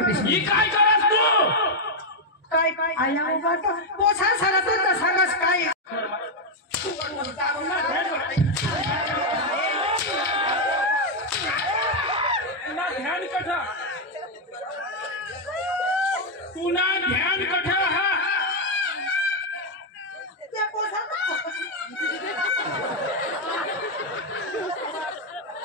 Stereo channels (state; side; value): normal; both; correlation 0.01